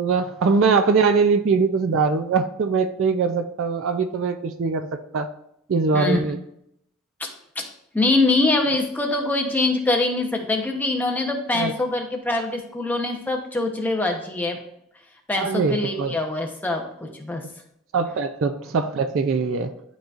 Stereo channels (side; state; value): both; normal; correlation 0.34